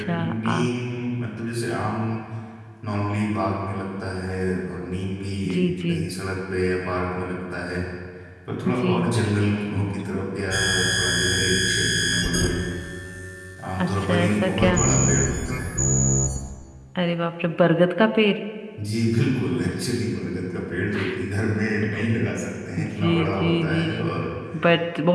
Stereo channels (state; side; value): identical; both; correlation 1.00